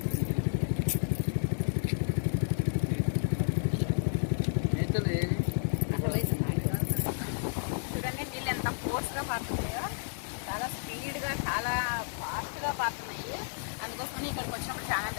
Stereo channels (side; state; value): right; silent; digital silence